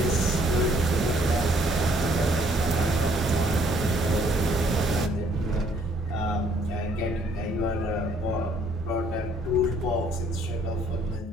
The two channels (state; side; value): normal; both; correlation 0.63